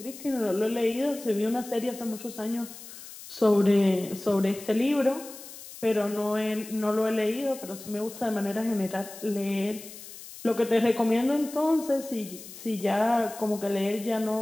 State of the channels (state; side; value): noise; left; hiss, 15 dB below the sound